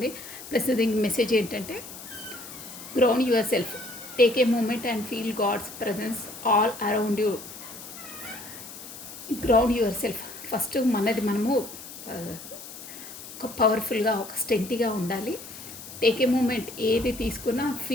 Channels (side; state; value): left; noise; hiss, 13 dB below the sound